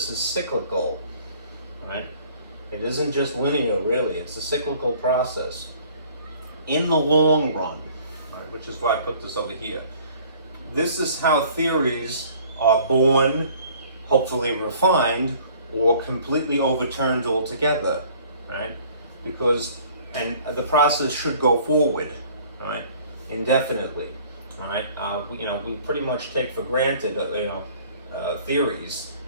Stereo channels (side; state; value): both; inverted; correlation -0.53